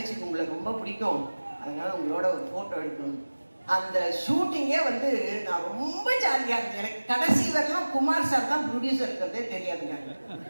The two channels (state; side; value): inverted; both; correlation -1.00